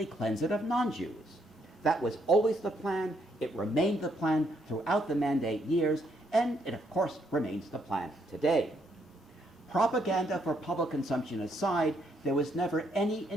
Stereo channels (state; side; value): normal; both; correlation 0.73